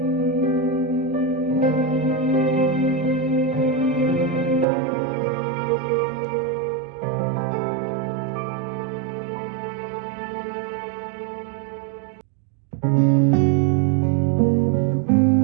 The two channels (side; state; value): left; drops out; at 4.7 s